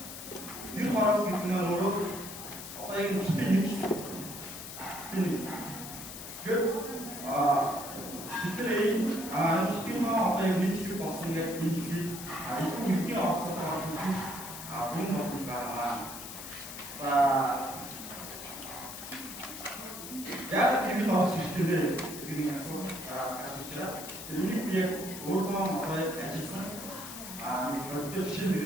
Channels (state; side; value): noise; left; hiss, 10 dB below the sound